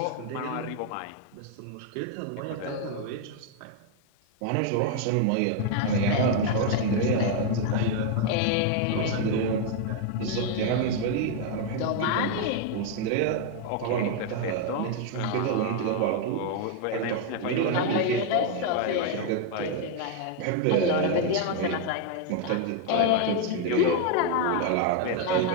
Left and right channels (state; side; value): different; both; correlation 0.00